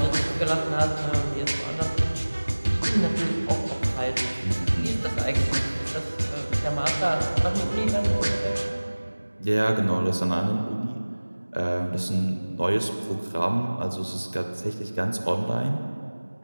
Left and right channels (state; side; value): inverted; both; correlation -1.00